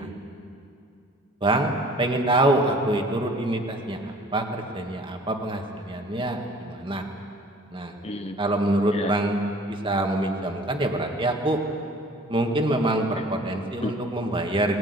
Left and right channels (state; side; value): normal; both; correlation 0.50